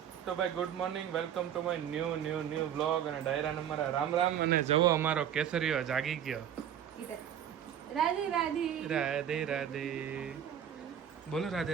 ભાઈ good morning, welcome to my new vlog અને ડાયરા નંબર રામ રામ. અને જવો અમારો કેસરીઓ જાગી ગયો. રાધે રાધે રાધે રાધે બોલો, રાધે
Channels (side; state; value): left; quieter; 9.6 dB